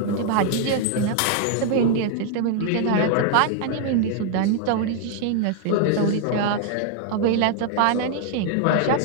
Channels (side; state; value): both; different; correlation 0.00